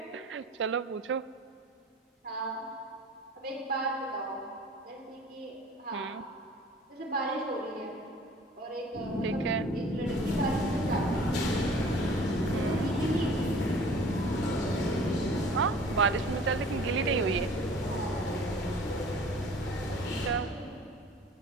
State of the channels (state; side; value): normal; both; correlation 0.48